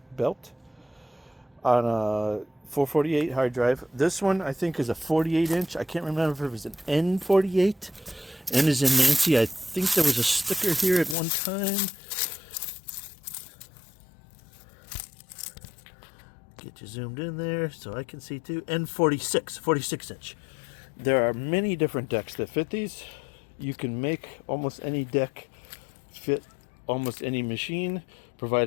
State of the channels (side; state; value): right; drops out; at 11.2 s